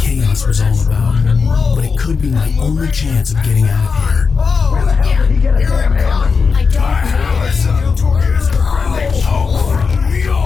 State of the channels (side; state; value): right; quieter; 5.2 dB